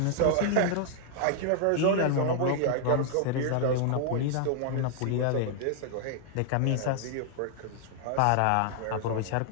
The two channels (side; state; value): both; different; correlation 0.00